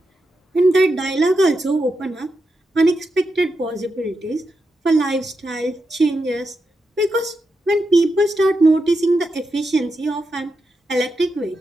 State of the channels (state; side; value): normal; both; correlation 0.87